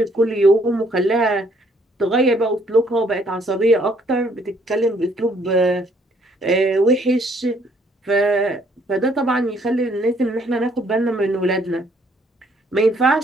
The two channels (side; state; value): both; normal; correlation 0.66